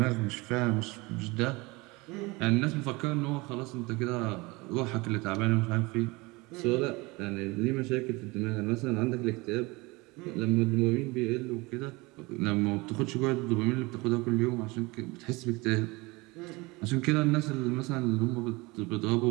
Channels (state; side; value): quieter; left; 24.0 dB